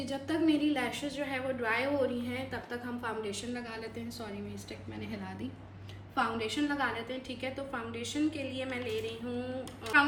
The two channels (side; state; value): both; identical; correlation 1.00